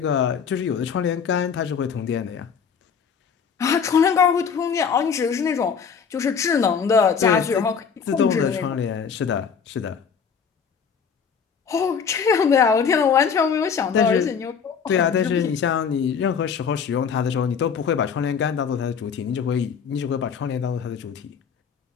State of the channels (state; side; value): quieter; right; 6.5 dB